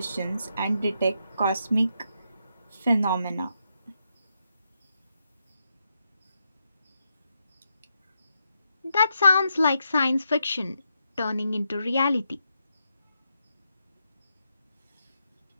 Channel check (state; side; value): inverted; both; correlation -0.82